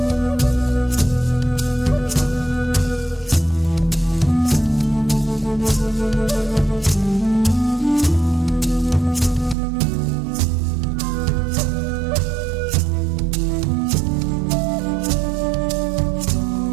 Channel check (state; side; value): drops out; left; at 9.6 s